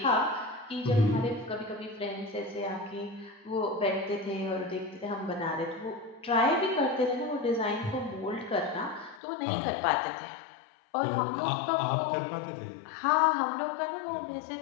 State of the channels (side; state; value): right; drops out; at 9.2 s